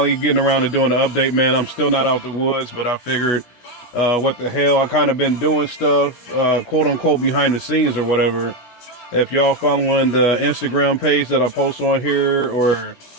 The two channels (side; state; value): right; late; 16 ms